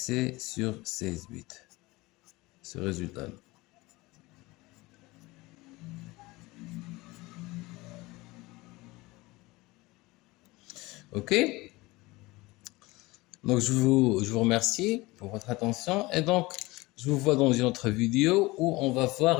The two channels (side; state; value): right; quieter; 21.5 dB